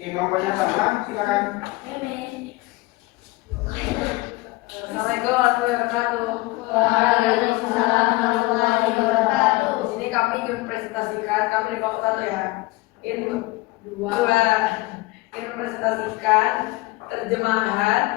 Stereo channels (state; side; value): quieter; right; 21.4 dB